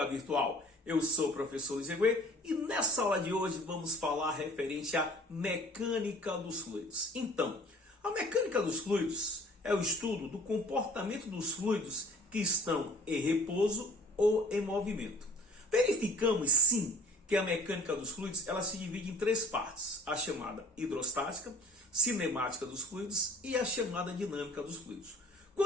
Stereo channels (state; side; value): normal; both; correlation 0.51